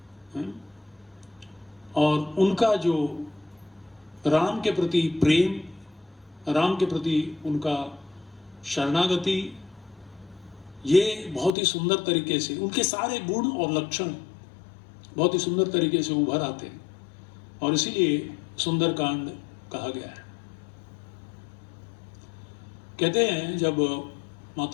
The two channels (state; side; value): drops out; right; at 11.6 s